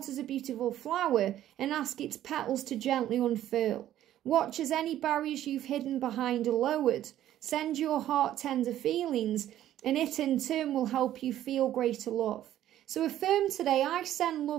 as a beautiful flower and ask its petals to gently unfurl. Watch as any barriers you've hidden behind are lowered. Send your heart tender feelings, and it in turn will help you feel greater love. So affirm today, I send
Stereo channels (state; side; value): quieter; left; 12.4 dB